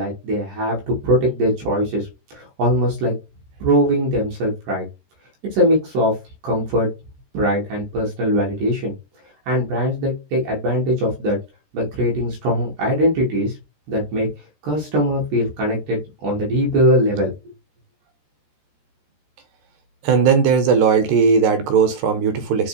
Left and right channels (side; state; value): left; late; 13 ms